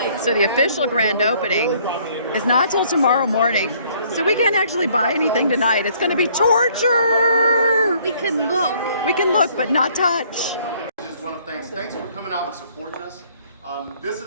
So the official grand opening is not till tomorrow morning. So we can't actually buy anything tonight. It's gonna be torture. We can look. We can look, but not touch. This is one of the things. Thanks for coming out and supporting us. This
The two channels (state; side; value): inverted; both; correlation -0.62